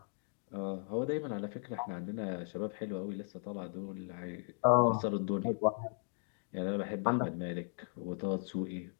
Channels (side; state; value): right; silent; 53 dB below the other